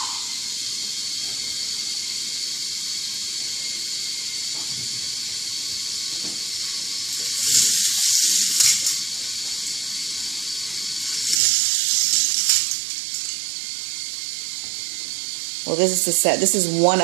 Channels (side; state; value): left; drops out; at 11.4 s